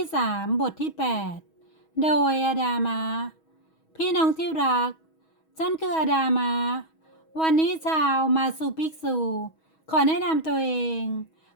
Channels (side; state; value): right; late; 6.3 ms